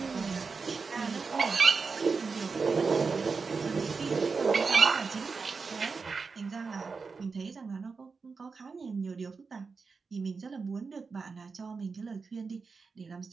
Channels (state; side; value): quieter; left; 4.8 dB